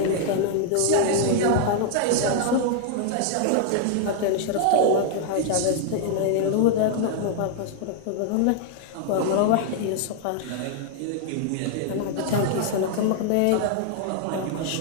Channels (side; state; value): both; different; correlation 0.00